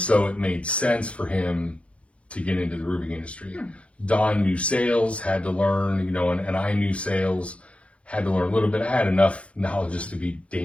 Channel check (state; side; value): late; right; 0.062 ms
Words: it made sense for him to get into the roofing industry. Don knew sales, had to learn, and I knew sales. Had to learn a little bit. I had enough knowledge just to be